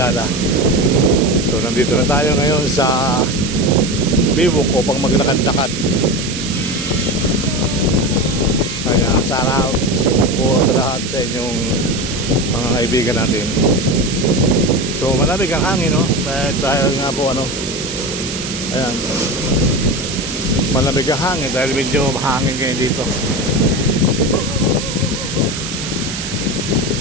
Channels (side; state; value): right; noise; hiss, 7 dB below the sound